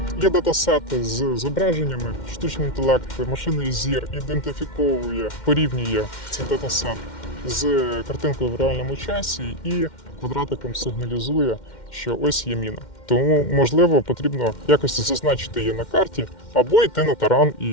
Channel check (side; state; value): right; late; 2.1 ms